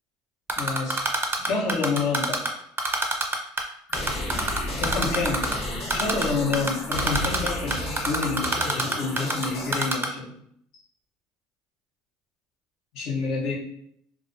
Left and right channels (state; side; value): normal; both; correlation 0.44